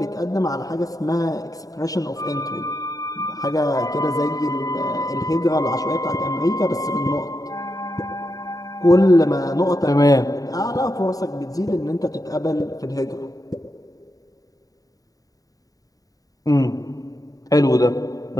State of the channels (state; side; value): late; right; 0.18 ms